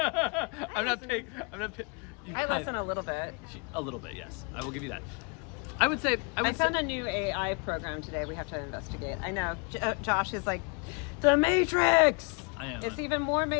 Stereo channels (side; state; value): right; quieter; 33.5 dB